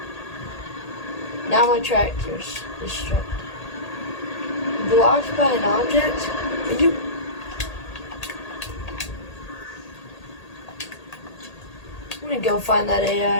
Now my tractor's destructed. Blocked by an object? Are you... I'm gonna go find that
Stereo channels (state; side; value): late; right; 1.8 ms